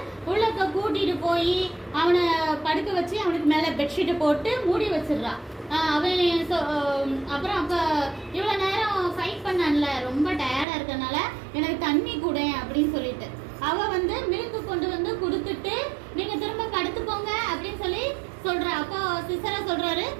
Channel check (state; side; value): drops out; left; at 10.7 s